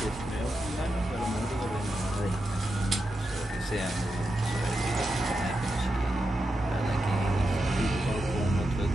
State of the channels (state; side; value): normal; both; correlation 0.88